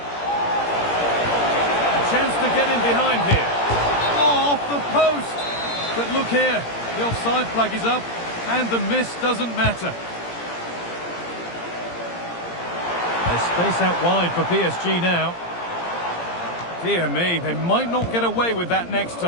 chance to get in behind here. Oh, off the post. But look here, the offside flag is up and the miss doesn't matter. There's space out wide for PSG now. Dear me, they might not get away with that next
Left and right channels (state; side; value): late; right; 17 ms